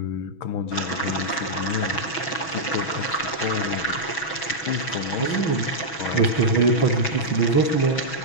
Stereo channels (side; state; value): right; late; 6.1 ms